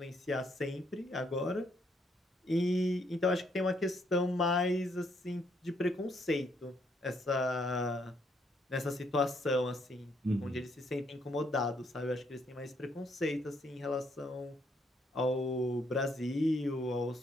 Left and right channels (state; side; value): normal; both; correlation 0.72